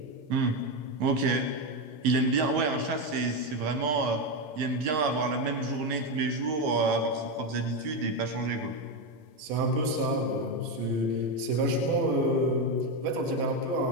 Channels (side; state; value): left; late; 13 ms